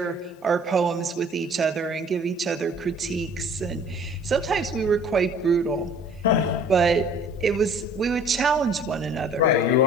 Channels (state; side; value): normal; both; correlation 0.51